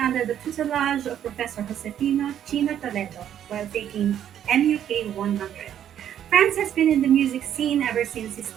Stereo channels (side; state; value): left; quieter; 10.2 dB